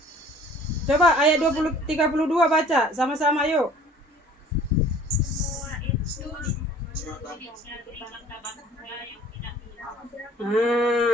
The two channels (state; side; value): normal; both; correlation 0.50